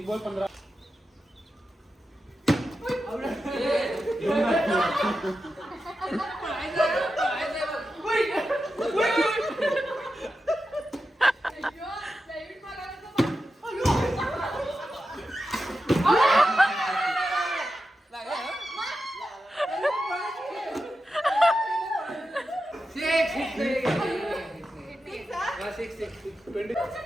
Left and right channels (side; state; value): both; normal; correlation 0.90